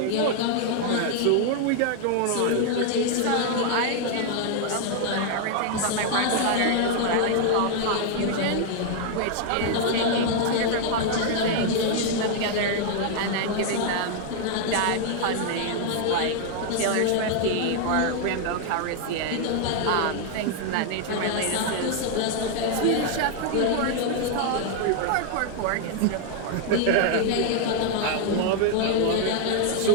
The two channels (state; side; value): different; both; correlation 0.00